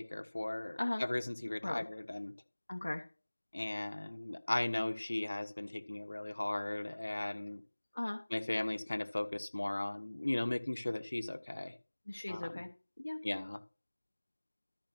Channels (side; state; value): both; inverted; correlation -1.00